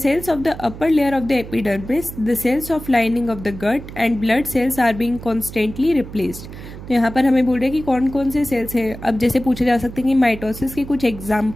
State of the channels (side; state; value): right; noise; hum, 13 dB below the sound